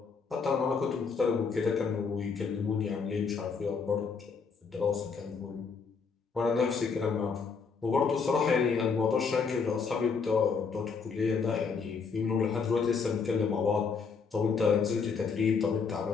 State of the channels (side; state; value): right; quieter; 5.4 dB